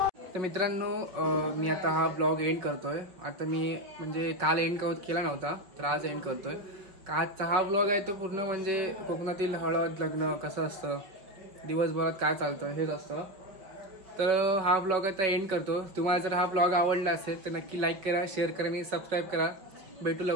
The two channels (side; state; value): left; late; 5.0 ms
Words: तर मित्रांनो मी आता हा ब्लॉग एंड करतोय. आता मी म्हणजे काल एंड केला नव्हता तर आज एंड करतोय. आजचा हा ब्लॉग आहे तो पूर्ण म्हणजे कोकणातील हळद लग्न कसं असतं दिवसभरात काय चालतं हेच असतं. तर हा ब्लॉग आता एंड करतो. तुम्हाला जर हा ब्लॉग आवडला असेल तर नक्की लाईक करा, शेअर करा आणि सबस्क्राईब करा. भेटू